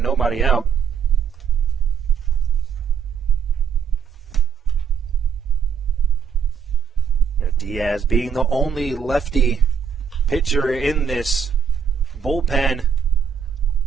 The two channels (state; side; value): quieter; left; 6.9 dB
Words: nobody out. Diaz being the only lefty pitcher in this bullpen